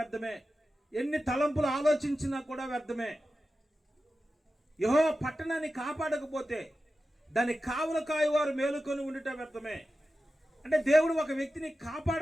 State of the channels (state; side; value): normal; both; correlation 0.93